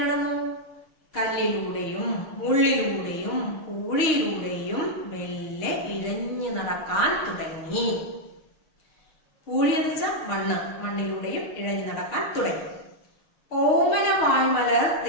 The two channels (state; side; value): late; right; 6.4 ms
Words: നടന്നു? കല്ലിലൂടെയും മുള്ളിലൂടെയും പൂഴിയിലൂടെയും മെല്ലെ ഇഴഞ്ഞു നടക്കാൻ തുടങ്ങി. പൂഴി എന്ന് വെച്ചാൽ മണ്ണിലൂടെയും ഇഴഞ്ഞു നടക്കാൻ തുടങ്ങി. ഓമന വായ്മലർ